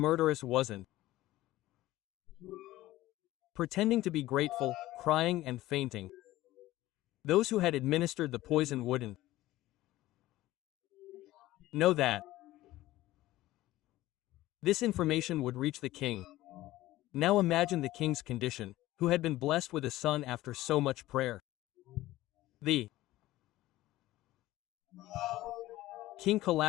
wasn't. Pretending to be grateful, crying and fainting. Those who had administered the poison wouldn't know that this information would reach the king. Now imagine the king's condition, who had been blessed with a son after so much prayer. The king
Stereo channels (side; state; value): right; quieter; 16.4 dB